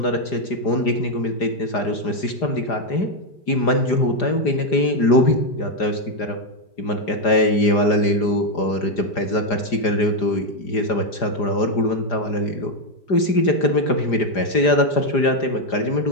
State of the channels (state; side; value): late; right; 4.9 ms